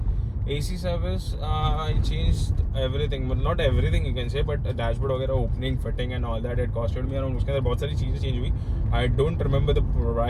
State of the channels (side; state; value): both; identical; correlation 1.00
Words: service I changed everything, not everything you can say, but dashboard वगैरह, opening fitting and all that, it costed me around, उसके अंदर बहुत सारी चीज़ें चेंज हुई। I don't remember the